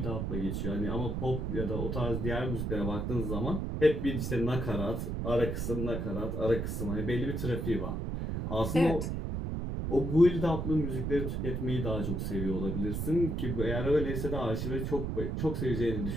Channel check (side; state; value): right; noise; rumble, 2 dB below the sound